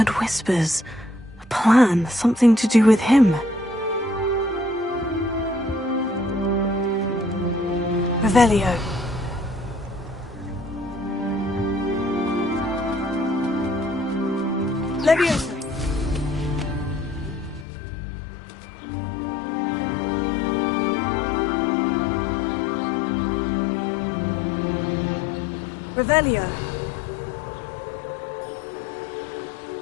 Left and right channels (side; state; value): right; drops out; at 17.7 s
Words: whispers. A plan, something to do with him. Revelio. Levioso. Revelio.